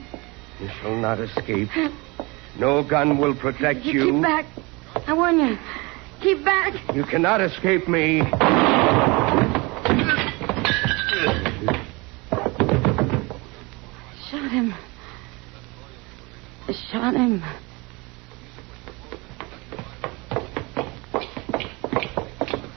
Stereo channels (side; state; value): left; quieter; 25.9 dB